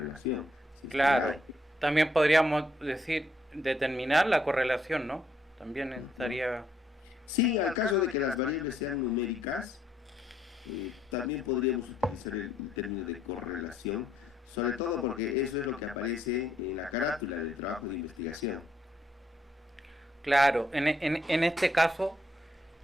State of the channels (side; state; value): both; normal; correlation 0.72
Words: Si claro, también podríamos decir determinar la correlación, ¿no? También estaría... Sí, al caso de que las variables sean numéricas, también podríamos utilizar el término de correlación, sobre todo porque eso es lo que aparece en la carátula del trabajo de investigación. Claro, en este caso,